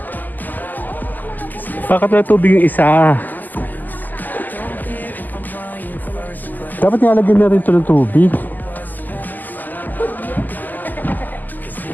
Bakit wala tubig yung isa? Dapat nilalagyan na rin ito ng tubig.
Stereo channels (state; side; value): late; right; 0.085 ms